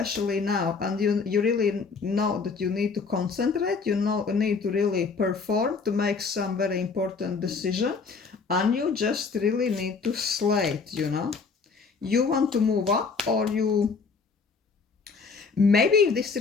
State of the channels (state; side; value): quieter; right; 4.9 dB